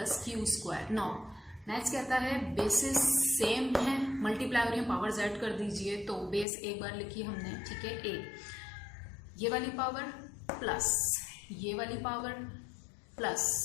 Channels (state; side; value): drops out; right; at 6.5 s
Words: Q square. Now next कहता है बेसिस सेम है, मल्टीप्लाई हो रही है, पावर्स ऐड कर दीजिए। तो बेस एक बार लिखी हमने, ठीक है, ए, ये वाली पावर प्लस ये वाली पावर प्लस